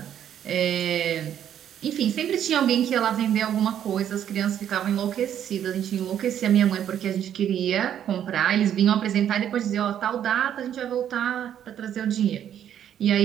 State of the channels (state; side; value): quieter; left; 10.0 dB